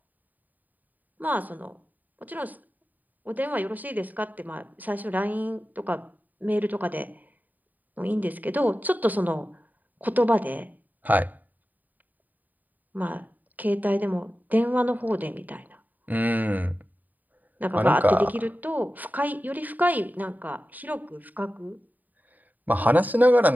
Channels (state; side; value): late; left; 0.084 ms